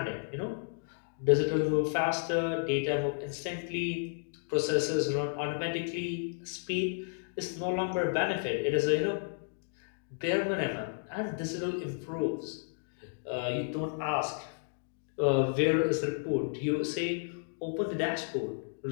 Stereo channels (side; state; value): right; silent; digital silence